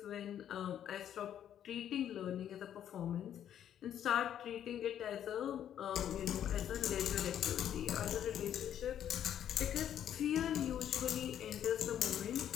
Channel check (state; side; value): quieter; right; 10.1 dB